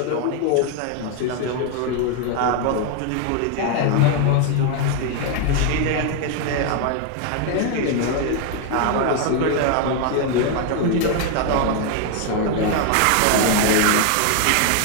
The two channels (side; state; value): both; different; correlation 0.01